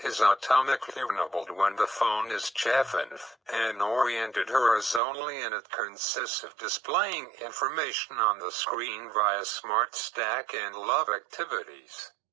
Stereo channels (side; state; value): left; drops out; at 5.0 s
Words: is automatically enabled when the phone is chafing and oriented horizontally, and it consists of displaying information on the screen via Smart Stack and Love Activities.